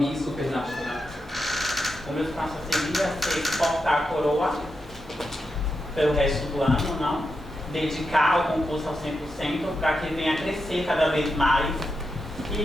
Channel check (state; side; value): normal; both; correlation 0.87